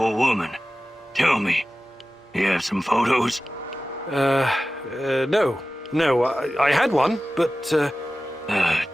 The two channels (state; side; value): normal; both; correlation 0.95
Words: woman. Tell me, you have some photos? No. No, I had one, but,